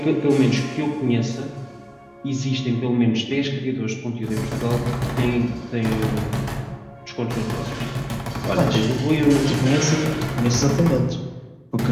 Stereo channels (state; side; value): identical; both; correlation 1.00